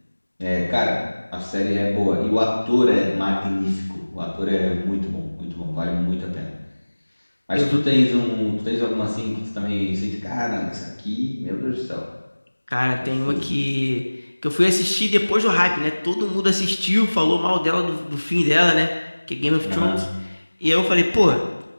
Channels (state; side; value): inverted; both; correlation -1.00